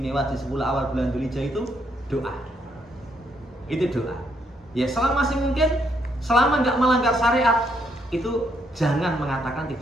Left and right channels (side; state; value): both; normal; correlation 0.74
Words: di 10 awal bulan Dzulhijjah itu doa. Itu doa. Ya selama masih mungkin, selama nggak melanggar syariat, itu jangan mengatakan